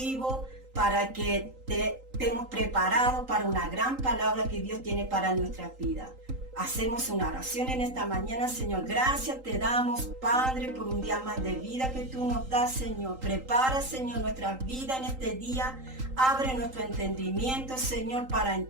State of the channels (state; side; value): late; left; 3.8 ms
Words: para que estemos preparados para una gran palabra que Dios tiene para nuestra vida. Hacemos una oración en esta mañana. Señor, gracias te damos, Padre, por un día más de vida que tú nos das, Señor. Prepara, Señor, nuestra vida en este día. Abre nuestro entendimiento, Señor, para